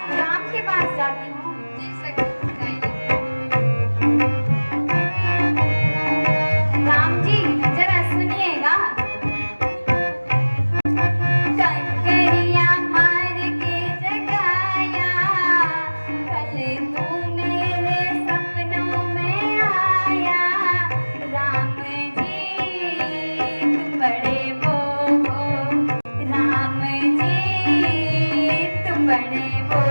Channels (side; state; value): both; inverted; correlation -1.00